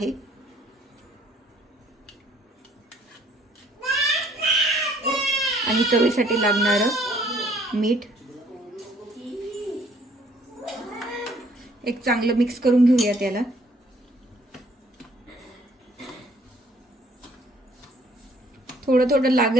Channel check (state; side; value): normal; both; correlation 0.61